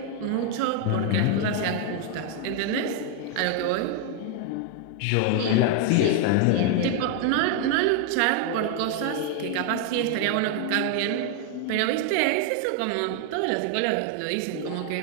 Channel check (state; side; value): different; both; correlation 0.00